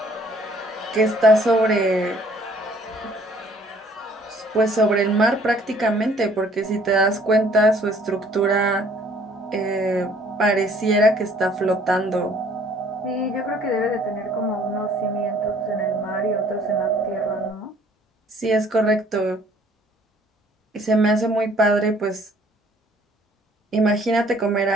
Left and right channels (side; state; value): both; normal; correlation 0.59